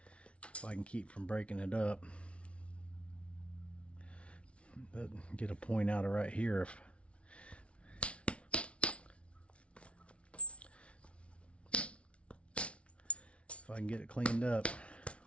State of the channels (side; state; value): right; late; 0.061 ms